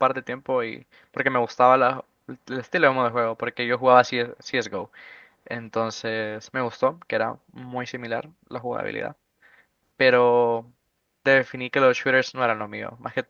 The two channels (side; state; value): both; identical; correlation 1.00